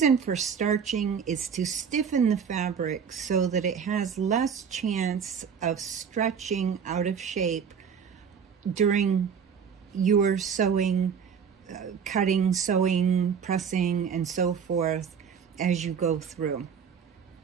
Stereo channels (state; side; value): quieter; left; 7.0 dB